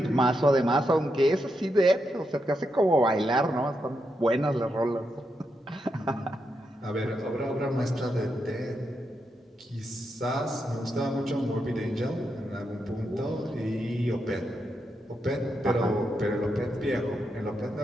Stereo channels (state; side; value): normal; both; correlation 0.83